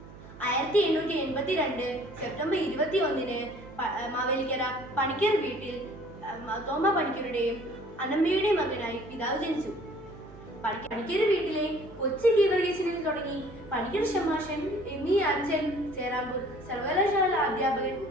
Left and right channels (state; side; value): noise; right; hum, 18 dB below the sound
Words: 1882 സെപ്റ്റംബർ 21 മാവേലിക്കര പണിക്കർ വീട്ടിൽ തോമ പണിക്കരുടെയും അനമ്മയുടെയും മകനായി പിതാവ് ജനിച്ചു. പണിക്കർ വീട്ടിലെ കൊച്ചി ഗീവർഗീസിനിൽ തുടങ്ങി പണിക്കർ ഷമാഷൻ, എം.ഇ. അഞ്ചൽ, ചേരാമ്പൂർ സർവകലാശാല അധ്യാപകൻ,